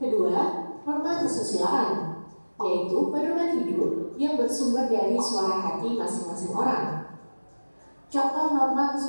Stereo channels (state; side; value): inverted; both; correlation -1.00